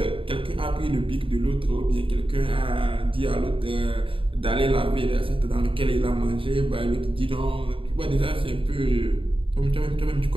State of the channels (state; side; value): late; left; 0.25 ms